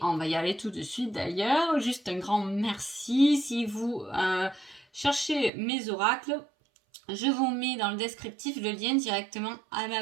on va y aller tout de suite d'ailleurs. Juste un grand merci. Si vous cherchez mes oracles, je vous mets dans le descriptif le lien directement à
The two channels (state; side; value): drops out; left; at 5.5 s